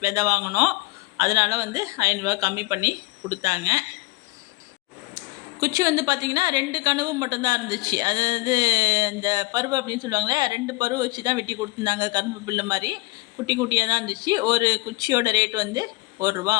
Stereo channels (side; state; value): right; quieter; 22.5 dB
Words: விதை வாங்கினோம். அதனால் வந்து 500 கம்மி பண்ணி கொடுத்தாங்க. குச்சி வந்து பார்த்திங்கன்னா 2 கனவு மட்டும்தான் இருந்துச்சு. அதாவது இந்த பருவு அப்படின்னு சொல்லுவாங்களே, 2 பருவு வச்சு தான் வெட்டி கொடுத்துருந்தாங்க. கரும்பு பில்லு மாதிரி குட்டி குட்டியாக தான் இருந்துச்சு. ஒரு குச்சியோட ரேட் வந்து